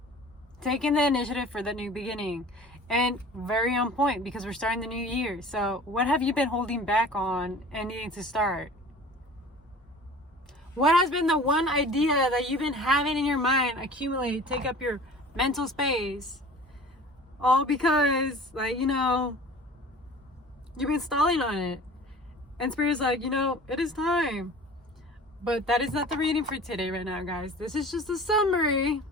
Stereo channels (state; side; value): normal; both; correlation 0.43